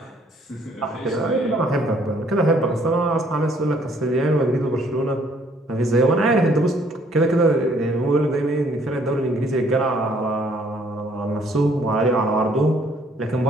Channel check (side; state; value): both; normal; correlation 0.63